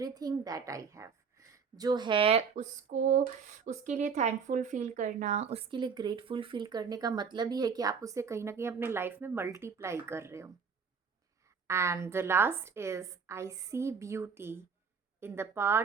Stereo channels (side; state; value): left; quieter; 6.0 dB